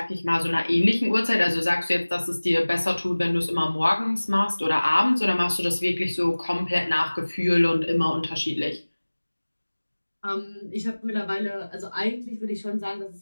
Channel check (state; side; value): inverted; both; correlation -1.00